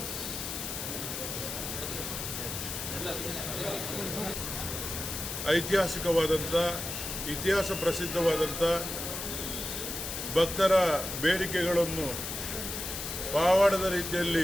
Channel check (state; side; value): noise; left; hiss, 5 dB below the sound